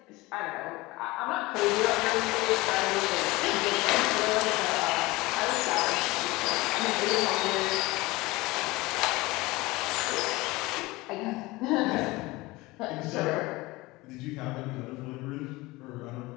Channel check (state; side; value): quieter; right; 21.4 dB